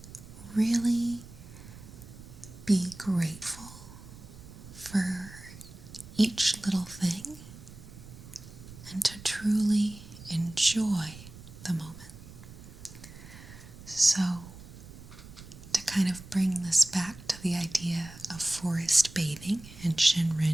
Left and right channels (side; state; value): right; noise; rumble, 17 dB below the sound